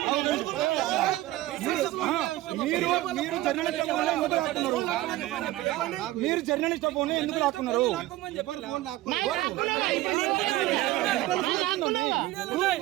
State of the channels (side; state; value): left; quieter; 16.6 dB